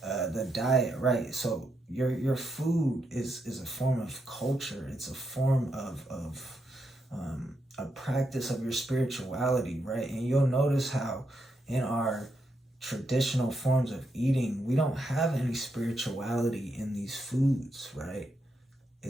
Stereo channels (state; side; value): normal; both; correlation 0.81